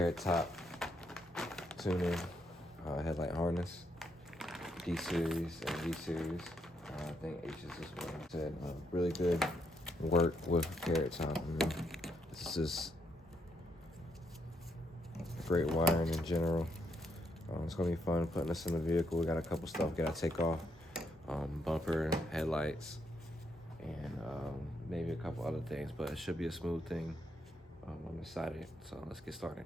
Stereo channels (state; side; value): normal; both; correlation 0.76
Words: top tuning headlight harness, D series and V series. I think H is this one. Said really good work with carrot top. This is just great wiring in general. It's gonna be fun putting this in the vehicle. We got a couple stuff we gotta take off, bumper, headlights, and maybe a couple other things. But it should be a smooth thing. I'm excited, so let's get started.